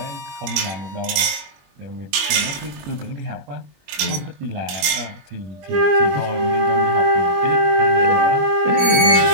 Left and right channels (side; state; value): left; late; 22 ms